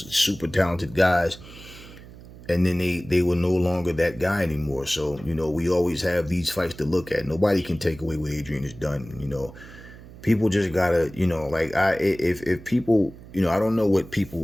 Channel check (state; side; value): noise; right; hum, 18 dB below the sound